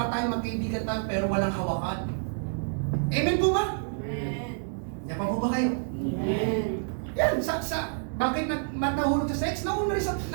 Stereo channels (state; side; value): silent; left; 59 dB below the other